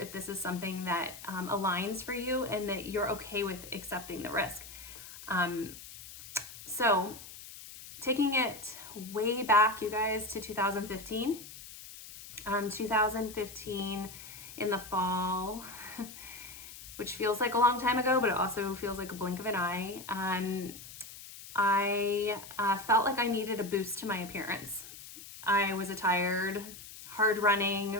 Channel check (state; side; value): noise; left; hiss, 14 dB below the sound